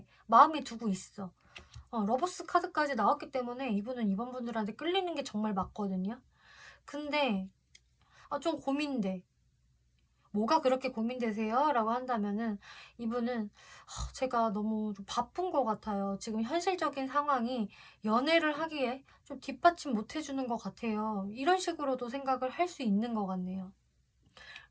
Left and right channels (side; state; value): both; identical; correlation 1.00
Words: 마음에 두고 있어. 러버스 카드까지 나왔기 때문에 이분은 이번 분들한테 끌리는 게 정말 맞거든요. 근데 좀 고민돼. 뭐가 그렇게 고민되세요? 라고 한다면은 이분은 제가 너무 좀 바쁜 것 같아요. 지금 현실적인 상황이 연애를 하기에 좀 뒷받침 못 해주는 것 같아요. 이런 식으로도 생각을 할 수 있는 것 같네요.